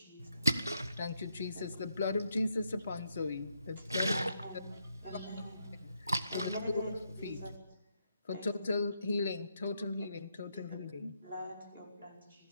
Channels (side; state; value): both; inverted; correlation -0.79